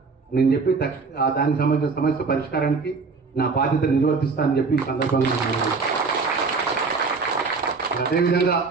నేను చెప్పి దానికి సంబంధించిన సమస్య పరిష్కారానికి నా బాధ్యత నిర్వర్తిస్తానని చెప్పి ఈ సందర్భంగా అదేవిధంగా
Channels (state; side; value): quieter; left; 4.5 dB